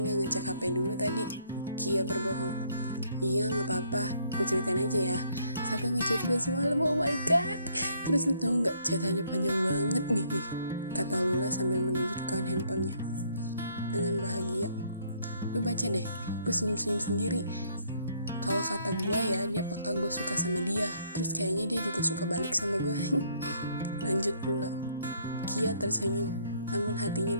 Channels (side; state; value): both; inverted; correlation -0.66